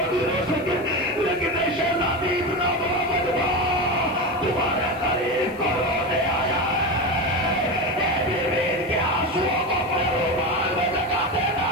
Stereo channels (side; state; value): right; noise; hiss, 28 dB below the sound